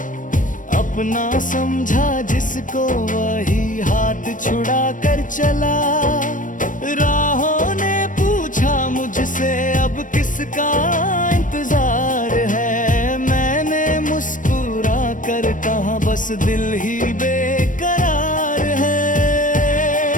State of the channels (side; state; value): right; late; 0.38 ms